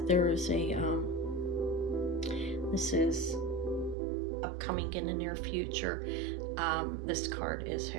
there is a, this is upcoming in the near future. This card is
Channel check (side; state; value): left; drops out; at 4.0 s